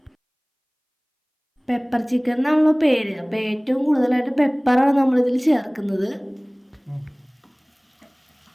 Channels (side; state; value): both; identical; correlation 1.00